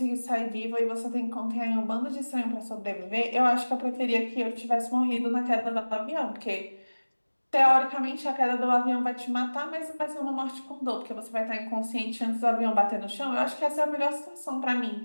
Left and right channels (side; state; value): both; inverted; correlation -1.00